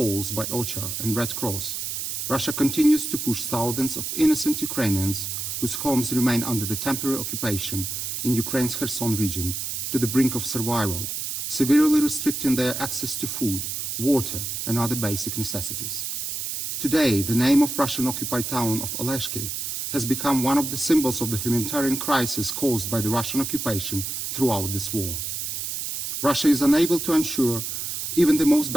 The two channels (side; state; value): right; noise; hiss, 4 dB below the sound